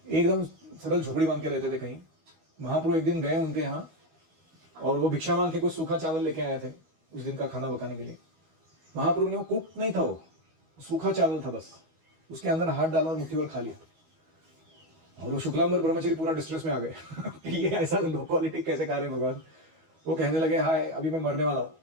एकदम सरल झोपड़ी बांध के रहते थे कहीं। महाप्रभु एक दिन गए उनके यहाँ और वो भिक्षा मांग के कुछ सूखा चावल लेके आए थे उस दिन का खाना पकाने के लिए। महाप्रभु ने, वो कुक नहीं था, वो सूखा चावल था बस, उसके अंदर हाथ डाला और मुट्ठी भर खा लिया। और वो शुक्लांबर ब्रह्मचारी पूरा डिस्ट्रेस में आ गए कि ये ऐसा लो क्वालिटी कैसे खा रहे हैं भगवान। वो कहने लगे, हाय अभी मैं मरने वाला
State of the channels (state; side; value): late; left; 12 ms